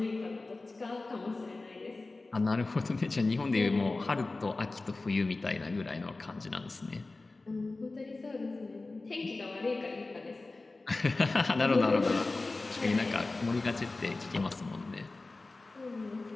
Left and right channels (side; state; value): right; quieter; 3.3 dB